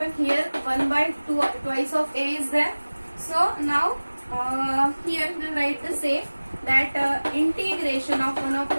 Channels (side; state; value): both; inverted; correlation -1.00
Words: here? 1 by 2 twice of a is there. So now here we will write the same. that integration of 1